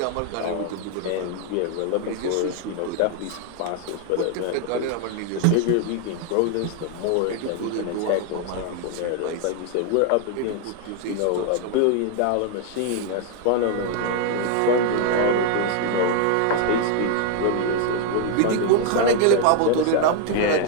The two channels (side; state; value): both; different; correlation 0.00